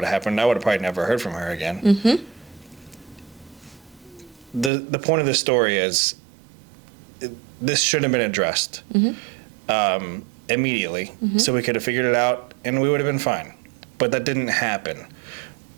have happened, I would have probably never heard from her again. Mm-hmm. The point of the story is this should have been addressed immediately, so we could have figured it out and we would have been fine. But that didn't happen.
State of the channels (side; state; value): left; drops out; at 4.7 s